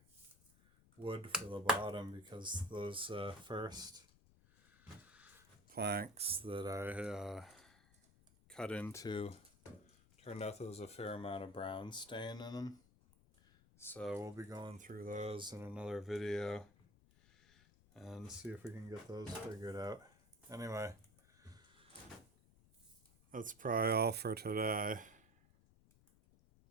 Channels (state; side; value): noise; left; rumble, 27 dB below the sound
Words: wood for the bottom because those first planks that I cut into turned out there was a fair amount of brown stain in them. So we'll be going through those in another video and see if we can get those figured out. Anyway, that's probably all for today.